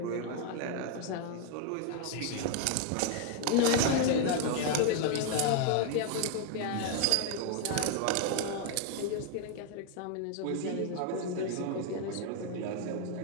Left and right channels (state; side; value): different; both; correlation 0.01